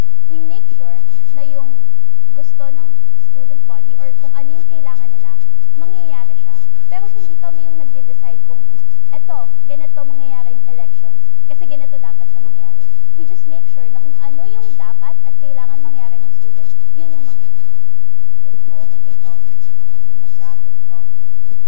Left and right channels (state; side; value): different; both; correlation 0.00